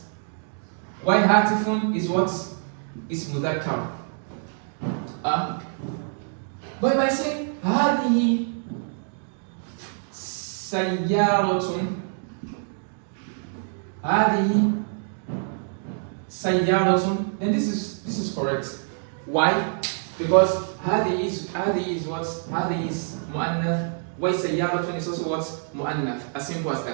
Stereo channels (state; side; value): silent; left; 61 dB below the other